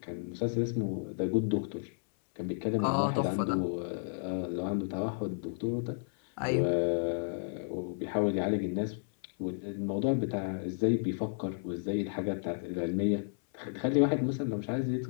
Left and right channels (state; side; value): silent; right; 56 dB below the other